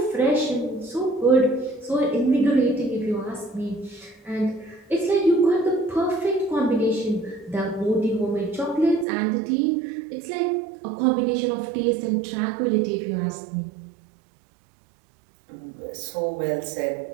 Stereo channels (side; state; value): left; drops out; at 9.1 s